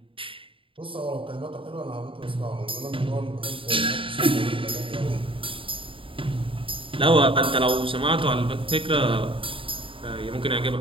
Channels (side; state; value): left; late; 0.25 ms